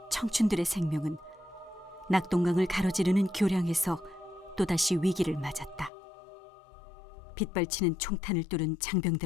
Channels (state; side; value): drops out; right; at 5.9 s